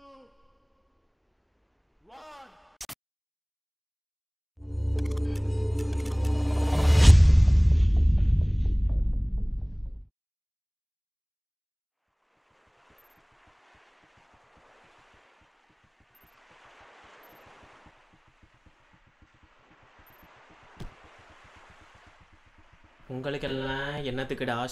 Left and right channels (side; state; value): both; identical; correlation 1.00